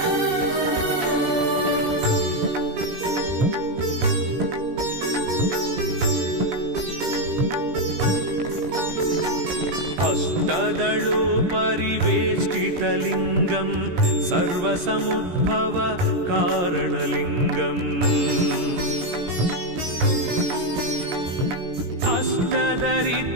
अष्टदलोपरिवेष्टितलिङ्गं सर्वसमुद्भव कारणलिङ्गम्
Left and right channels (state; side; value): late; left; 17 ms